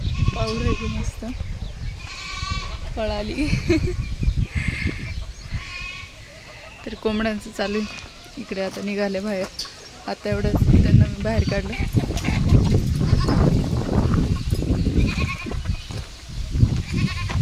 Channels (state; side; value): identical; both; correlation 1.00